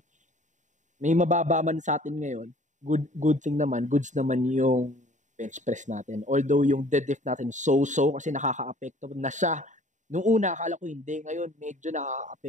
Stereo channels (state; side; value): late; left; 0.36 ms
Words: may mababa man sa atin ngayon. Good thing naman, goods naman yung bench press natin. Although yung deadlift natin so-so kasi nakaka-apekto na siya Nung una, akala ko hindi. Ngayon, medyo